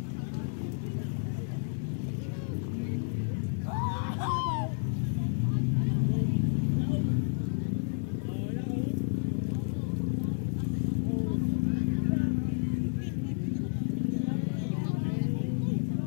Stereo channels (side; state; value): right; silent; 57 dB below the other